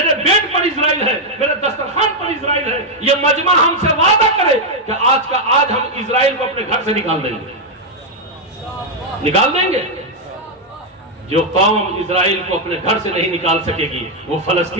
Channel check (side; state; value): both; normal; correlation 0.00